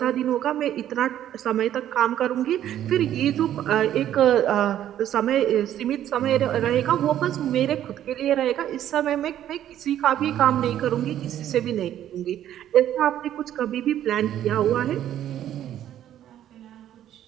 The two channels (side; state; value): left; quieter; 11.4 dB